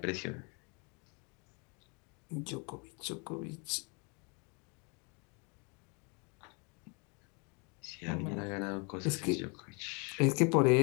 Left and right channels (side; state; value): right; quieter; 33.3 dB